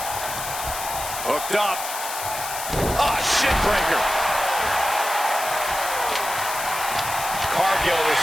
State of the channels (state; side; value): noise; left; hiss, 7 dB below the sound